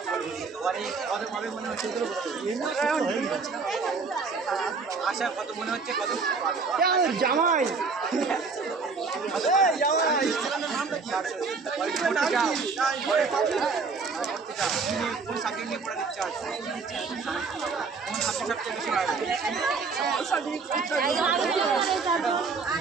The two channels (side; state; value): left; quieter; 4.7 dB